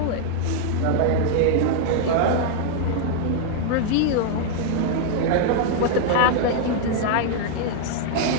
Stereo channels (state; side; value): different; both; correlation 0.00